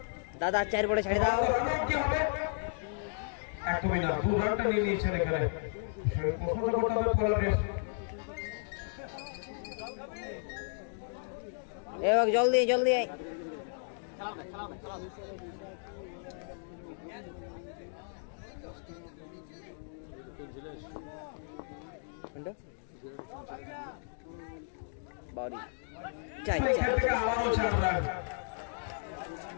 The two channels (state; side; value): silent; right; digital silence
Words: দাদা 4 বলে ছাড়ি দাও। একদমই না, 2 রানটা নিয়ে নিয়েছেন এখানে। প্রশ্নটা করতে হবে পোলারের। এবার জলদি জলদি আয়। বাড়ি চাই চাই আবারও 4 রান,